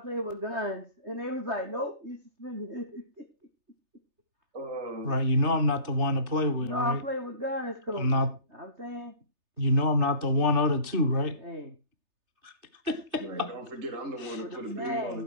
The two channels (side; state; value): left; late; 3.3 ms